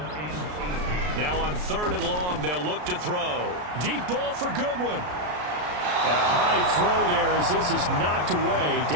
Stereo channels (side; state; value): left; late; 33 ms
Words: Now on 3rd and long, they'll look to throw. Deep ball for Goodwin. A high throw there as this is knocked away,